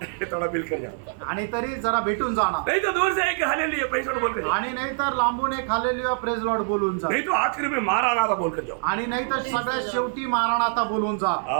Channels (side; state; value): left; silent; 62 dB below the other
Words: थोड़ा मिल कर जाओ। आणि तरी जरा भेटून जाणार, नहीं तो दूर से एक हालेलुया प्रेज लॉर्ड बोल कर जाओ, आणि नाही तर लांबून एक हालेलुया प्रेज लॉर्ड बोलून जा, नहीं तो आखिर में मारानाथा बोल कर जाओ। आणि नाही तर सगळ्यात शेवटी मारानाथा बोलून जा।